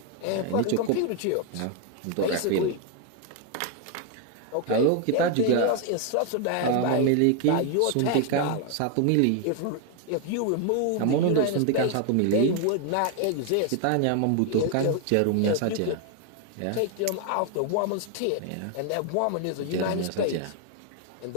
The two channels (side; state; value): both; different; correlation 0.00